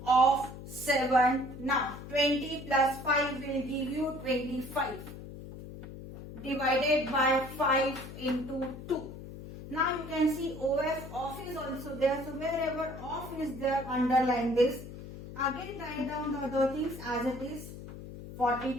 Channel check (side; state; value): left; noise; hum, 12 dB below the sound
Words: of 7. Now 20 plus 5 will give you 25. Divided by 5 into 2. Now you can see OF off is also there. So wherever off is there, underline this. Again write down the other things as it is.